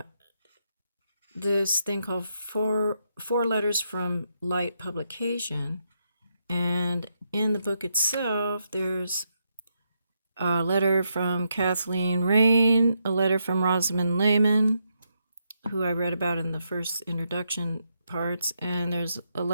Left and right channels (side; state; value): both; inverted; correlation -0.80